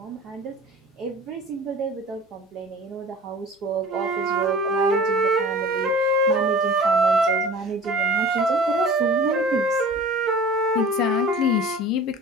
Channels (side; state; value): both; normal; correlation 0.42